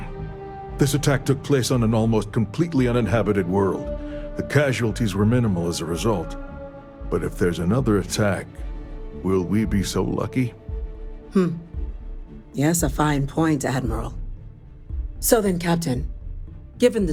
This attack took place on an almost completely uninhabited world. The casualties were minimal as a result. But if there's another attack, will we be so lucky? Yes, a fine point, Admiral. So then, Captain, given the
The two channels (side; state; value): both; identical; correlation 1.00